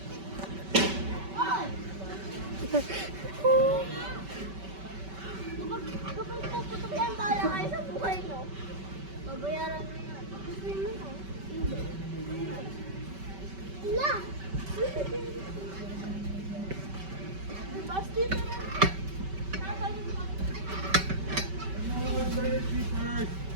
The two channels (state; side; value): late; left; 5.2 ms